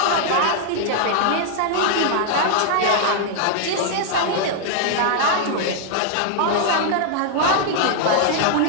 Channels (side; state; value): both; different; correlation 0.00